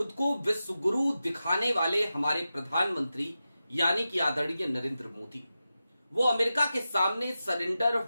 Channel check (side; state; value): both; inverted; correlation -0.92